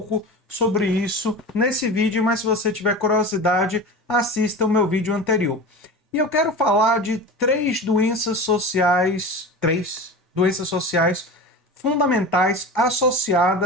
sobre isso nesse vídeo, mas se você tiver curiosidade, assista o meu vídeo anterior. E eu quero falar de três doenças sociais fundamentais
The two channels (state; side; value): normal; both; correlation 0.31